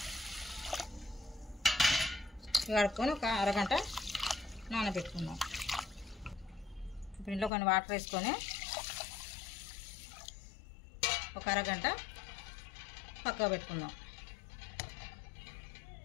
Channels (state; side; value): drops out; right; at 7.5 s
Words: ఒక అరగంట నానబెట్టుకుందాం. ఇప్పుడు ఇంట్లో కొన్ని వాటర్ వేసుకొని ఒక అరగంట పక్కకు పెట్టుకుందాం.